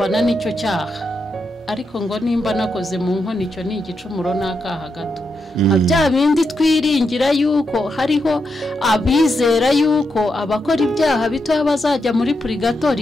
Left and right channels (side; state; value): both; normal; correlation 0.84